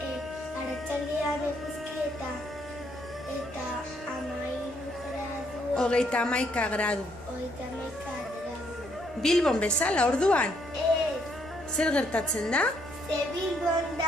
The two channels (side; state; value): both; normal; correlation 0.71